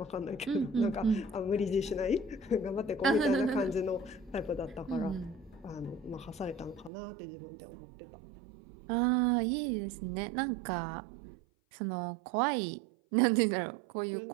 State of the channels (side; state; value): left; drops out; at 6.9 s